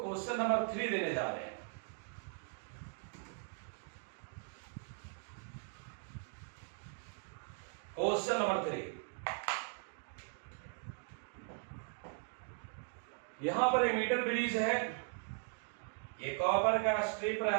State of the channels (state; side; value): silent; left; 52 dB below the other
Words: नंबर 3 देने जा रहे हैं। क्वेश्चन नंबर 3, यहां पर एक मीटर ब्रिज है। ये कॉपर का स्ट्रिप